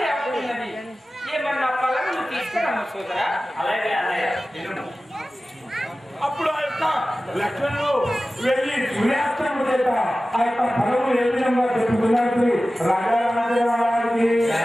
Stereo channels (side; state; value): both; normal; correlation 0.96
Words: అవుతున్నది, ఏమన్నా పళ్ళను తీసుకురాము సోదరా. అలాగే అన్నయ్య విను. అప్పుడు ఆ యొక్క లక్ష్మణుడు వెళ్ళి సూర్యాస్తమం చేత ఆ యొక్క ఫలము ఏ విధంగా చెప్పుకున్నట్టు రాజా రామచంద్రరావుకి